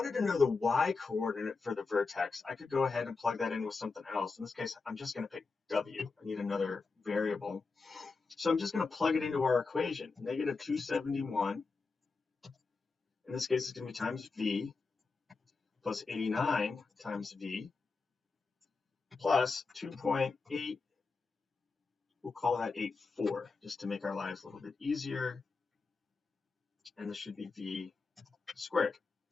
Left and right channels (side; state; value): right; quieter; 4.3 dB